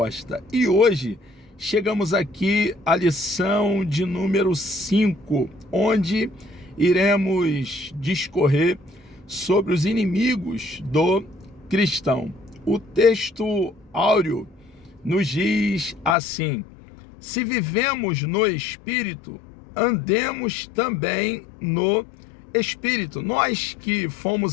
E hoje chegamos aqui à lição de número 5, onde iremos discorrer sobre os inimigos do cristão. O texto áureo nos diz assim: se vivemos no Espírito, andemos também no Espírito. Nós que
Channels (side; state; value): right; drops out; at 16.2 s